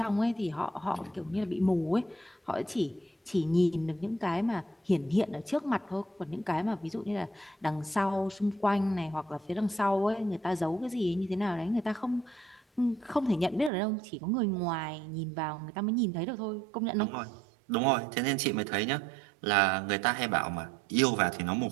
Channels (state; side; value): drops out; left; at 13.7 s